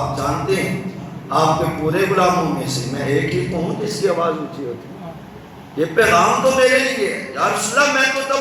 جانتے ہیں آپ کے پورے غلاموں میں سے میں ایک ہی ہوں جس کی آواز اونچی ہوتی ہے، یہ پیغام تو میرے لیے ہے۔ یا رسول اللہ میں تو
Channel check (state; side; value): identical; both; correlation 1.00